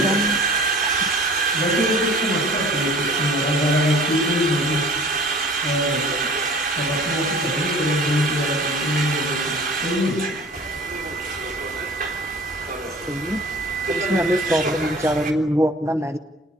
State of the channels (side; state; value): both; normal; correlation 0.46